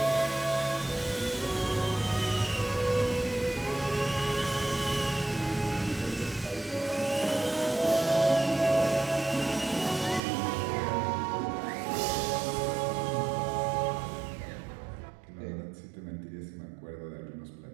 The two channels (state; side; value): drops out; left; at 10.2 s